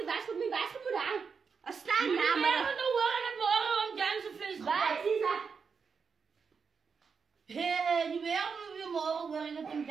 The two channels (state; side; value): quieter; left; 5.7 dB